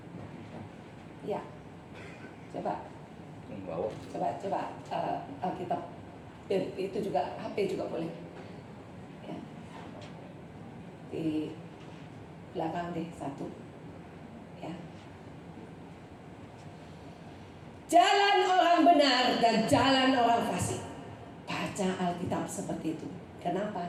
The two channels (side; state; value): both; identical; correlation 1.00